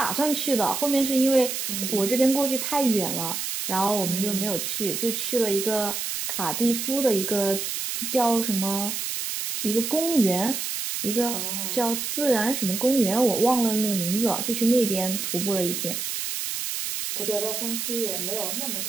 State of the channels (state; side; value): noise; right; hiss, 3 dB below the sound